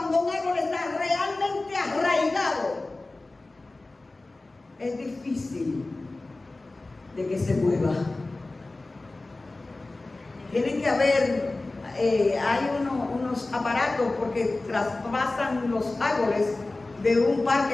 un árbol está realmente arraigado, es difícil de que se mueva. Tienen que haber, hay unos aparatos porque traspasan los árboles de un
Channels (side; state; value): right; quieter; 3.1 dB